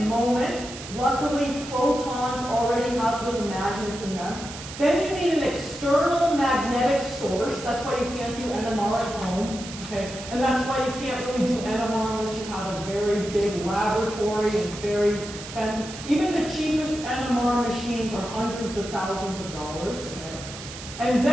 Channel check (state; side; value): noise; right; hiss, 12 dB below the sound